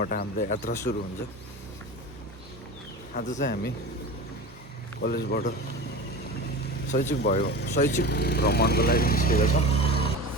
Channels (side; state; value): both; normal; correlation 0.31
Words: हाम्रो यात्रा सुरु हुन्छ। आज चाहिँ हामी कलेजबाट शैक्षिक भ्रमणको लागि निस्केका छौँ